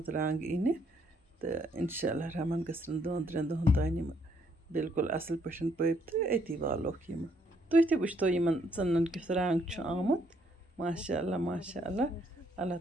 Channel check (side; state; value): both; normal; correlation 0.70